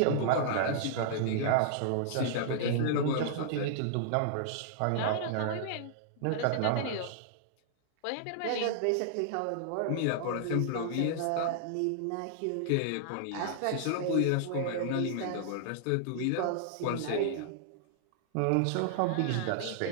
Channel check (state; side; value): different; both; correlation -0.01